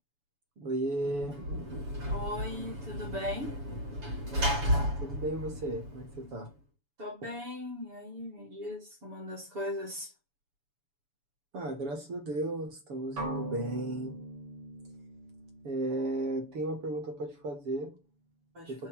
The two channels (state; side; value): late; left; 7.0 ms